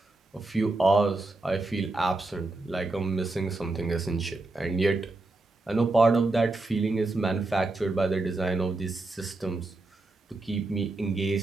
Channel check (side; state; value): left; quieter; 3.1 dB